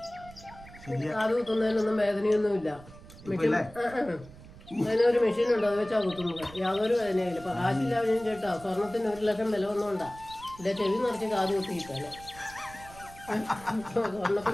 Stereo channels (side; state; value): right; noise; rumble, 19 dB below the sound